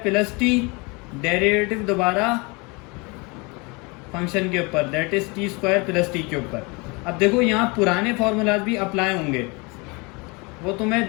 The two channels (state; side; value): quieter; right; 28.3 dB